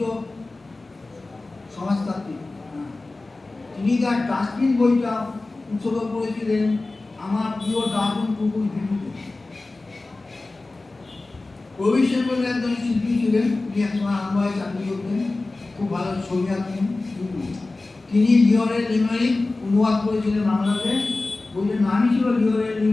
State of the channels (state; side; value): quieter; right; 3.2 dB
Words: সমাজতান্ত্রিক, তিনি তার ডাস্টবিন বইটা উৎসর্গ করেছিলেন আমার প্রিয় ডাস্টবিন কুকুর ভিডিওতে। প্রবীর সেন বলে একজন শিল্পী ছিলেন, তিনি একসময় আনন্দে চাকরি করতেন, খুব ভালো ছবি আঁকতেন। তিনি লিওরের লিমেরিক অনুবাদ করেছিলেন বাংলাতে। বইটার নামই ছিল লিওরের